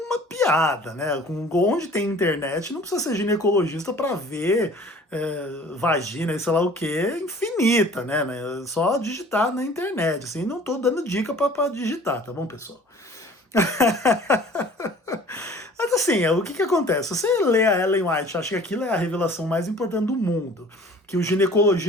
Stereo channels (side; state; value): both; normal; correlation 0.48